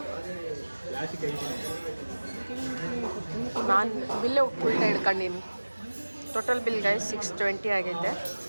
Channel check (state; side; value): inverted; both; correlation -1.00